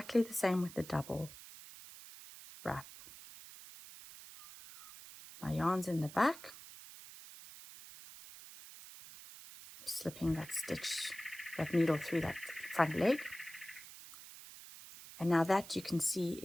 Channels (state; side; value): noise; right; hiss, 16 dB below the sound